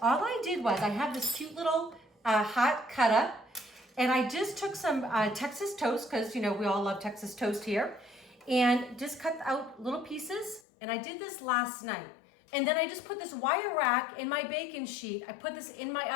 all I did was I have this cute little hot cutter, and I just took some Texas toast, because, you know, we all love Texas toast here, and just cut out little pieces. And I did this last night. And then I just put this wire rack in my baking sheet. I put this in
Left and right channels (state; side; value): drops out; right; at 10.6 s